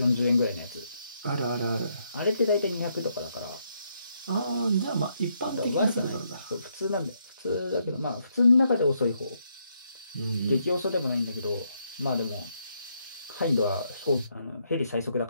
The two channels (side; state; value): both; inverted; correlation -0.76